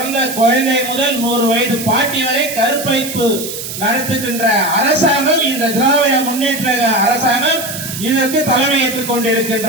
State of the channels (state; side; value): noise; right; hiss, 8 dB below the sound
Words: குழந்தை முதல் 100 வயது பாட்டி வரை கற்பழிப்பு நடத்துகின்ற அரசாங்கம் இந்த திராவிட முன்னேற்ற அரசாங்கம் இதற்கு தலைமையேற்றுக்